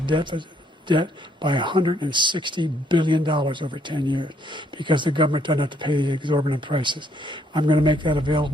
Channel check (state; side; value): normal; both; correlation 0.69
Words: by $160 billion over 10 years because the government doesn't have to pay the exorbitant prices. I'm going to make that